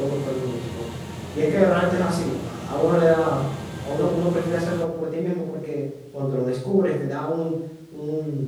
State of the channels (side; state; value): both; identical; correlation 1.00